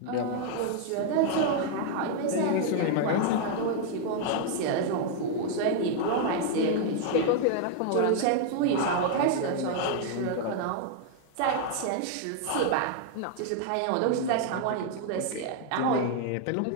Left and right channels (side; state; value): both; different; correlation 0.00